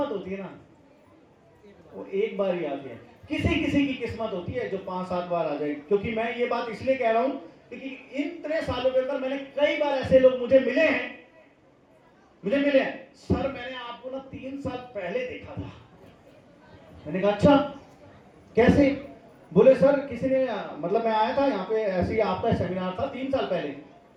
होती है ना वो एक बार ही आती है। किसी किसी की किस्मत होती है जो 5-7 बार आ जाए। क्योंकि मैं ये बात इसलिए कह रहा हूं क्योंकि इतने सालों के अंदर मैंने कई बार ऐसे लोग मुझे मिले हैं सर मैंने आपको ना 3 साल पहले देखा था। मैंने कहा अच्छा कैसे? बोले सर किसी ने, मतलब मैं आया था यहाँ पे, ऐसे ही आपका सेमिनार था 3 साल पहले।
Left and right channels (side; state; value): both; identical; correlation 1.00